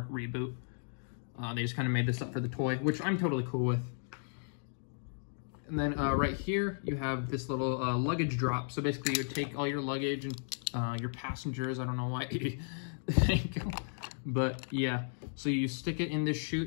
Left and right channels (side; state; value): right; silent; digital silence